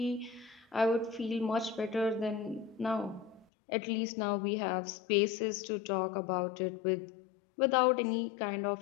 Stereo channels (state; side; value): drops out; right; at 3.5 s